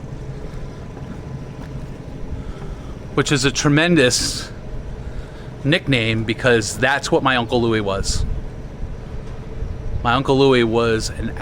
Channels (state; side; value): identical; both; correlation 1.00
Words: Which is a tremendous nickname because that's what my Uncle Louie was. My Uncle Louie was an